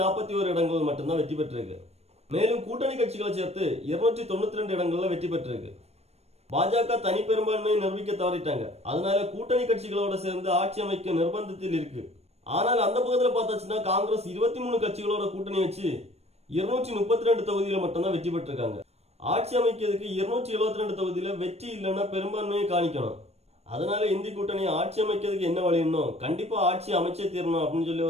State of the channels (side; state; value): left; late; 0.31 ms